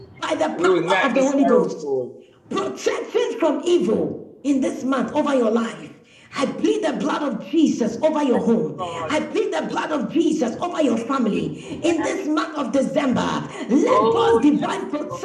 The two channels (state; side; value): identical; both; correlation 1.00